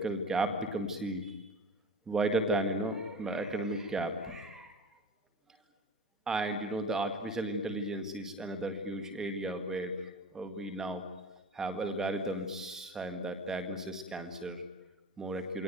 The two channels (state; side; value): normal; both; correlation 0.33